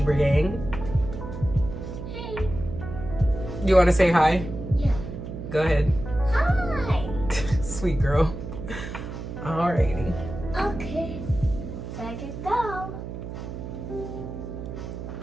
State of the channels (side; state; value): right; noise; hum, 8 dB below the sound